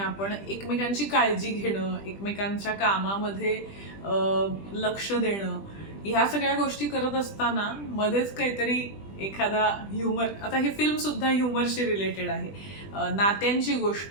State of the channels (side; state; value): right; late; 20 ms